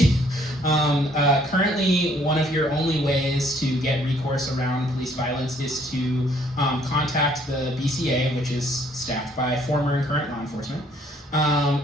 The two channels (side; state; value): both; normal; correlation 0.63